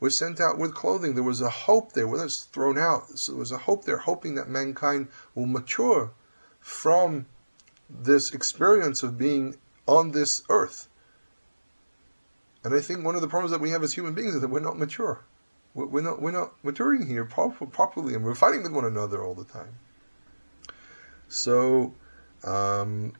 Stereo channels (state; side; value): inverted; both; correlation -1.00